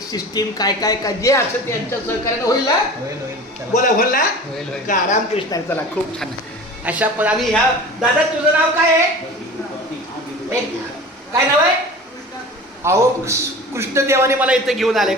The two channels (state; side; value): normal; both; correlation 0.37